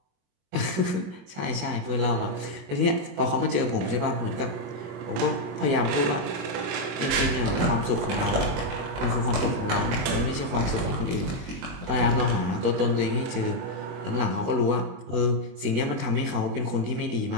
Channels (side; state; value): left; late; 22 ms